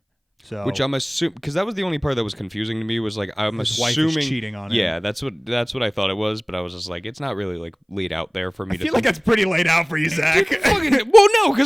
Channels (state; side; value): identical; both; correlation 1.00